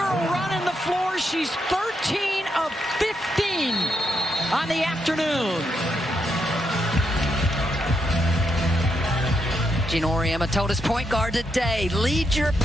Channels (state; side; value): normal; both; correlation 0.81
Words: running the floor. She's 13 of 15 on the afternoon. Gina Auriemma told his point guard today, lead your